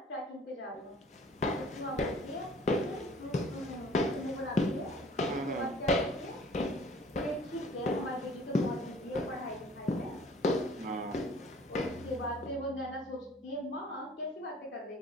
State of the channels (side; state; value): both; normal; correlation 0.53